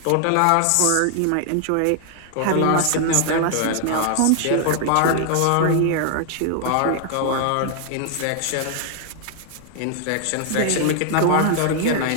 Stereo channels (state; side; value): different; both; correlation 0.00